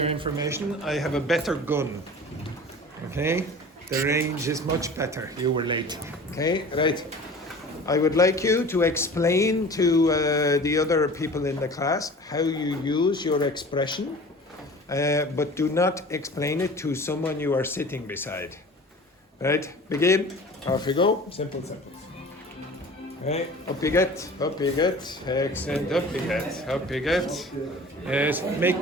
information, I have a better gun. Okay? The range is much better. You were late. Okay? Right. I would like you to explain to the other people in the class how you use your expression, but do not explain it to someone you are sitting beside. Right? Begin. Off you go. Simple sentence. Okay, up you get, excellent, up you get. Yes,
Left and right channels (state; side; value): normal; both; correlation 0.41